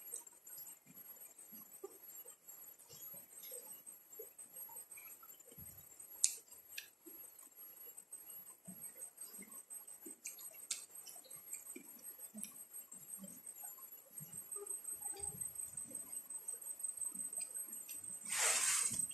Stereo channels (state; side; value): normal; both; correlation 0.90